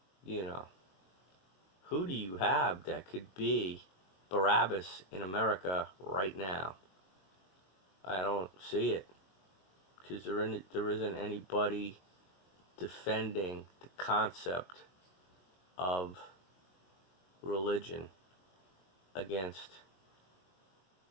Who do you have that could be Barabbas in America right now? I don't see it. Because there isn't anybody defending the concept of religion against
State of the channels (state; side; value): late; right; 22 ms